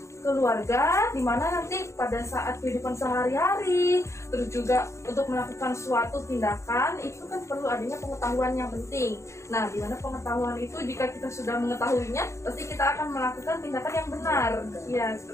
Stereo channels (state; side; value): late; right; 0.14 ms